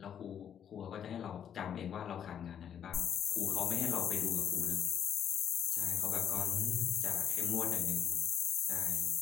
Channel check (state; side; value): quieter; right; 8.9 dB